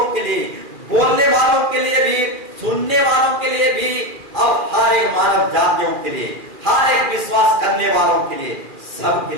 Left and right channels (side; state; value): left; late; 2.4 ms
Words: के लिए, बोलने वालों के लिए भी, सुनने वालों के लिए भी, और हर एक मानव जातियों के लिए, हर एक विश्वास करने वालों के लिए, सब के